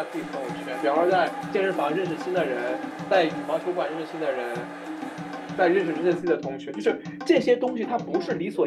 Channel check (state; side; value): identical; both; correlation 1.00